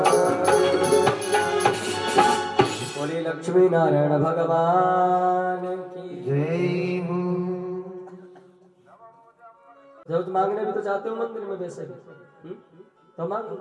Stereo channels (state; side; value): identical; both; correlation 1.00